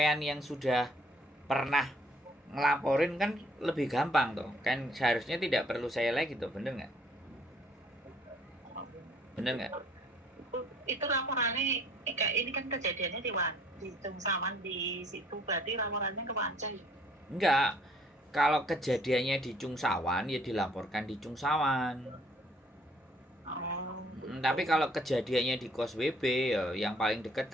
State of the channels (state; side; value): normal; both; correlation 0.61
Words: yang sudah pernah ngelaporin kan lebih gampang toh. Kan seharusnya tidak perlu saya lagi toh, bener nggak? Bener nggak? Itu laporannya kayak ini kan kejadiannya di Cungsawan di situ, berarti laporannya ke Wancai. Enggak. Kalau kejadiannya di Cungsawan ya dilaporkan di Cungsawan. Tapi kalau kejadiannya di Kos WB ya yang paling dekat